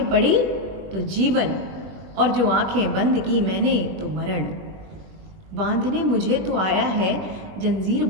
पड़ी तो जीवन, और जो आंखें बंद की मैंने तो मरण। बांधने मुझे तो आया है, जंजीर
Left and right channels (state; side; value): late; left; 21 ms